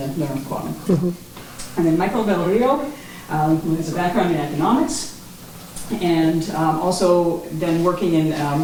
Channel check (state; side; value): identical; both; correlation 1.00